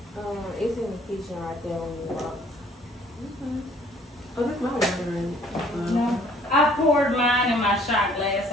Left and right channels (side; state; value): both; normal; correlation 0.58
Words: it's in the kitchen right there when you walk. Oh, that's my water. No. I poured mine in my shot glass